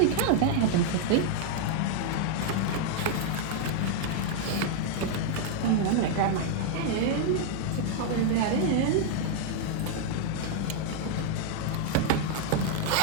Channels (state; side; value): different; both; correlation 0.00